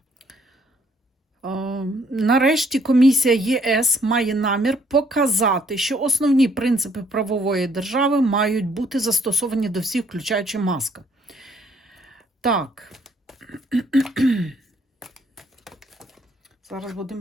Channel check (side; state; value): both; normal; correlation 0.66